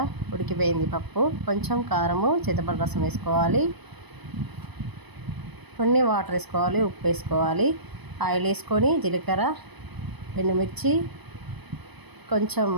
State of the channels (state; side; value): late; left; 0.99 ms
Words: ఉడికిపోయింది పప్పు. కొంచెం కారము, చింతపండు రసం వేసుకోవాలి, కొన్ని వాటర్ వేసుకోవాలి, ఉప్పు వేసుకోవాలి. ఆయిల్ వేసుకొని జీలకర్ర, ఎండుమిర్చి, కొంచెం